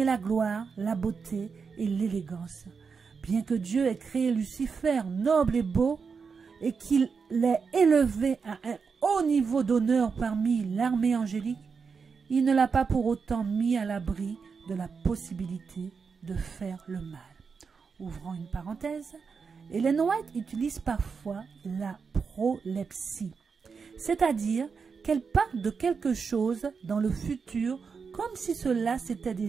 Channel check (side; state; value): left; quieter; 5.5 dB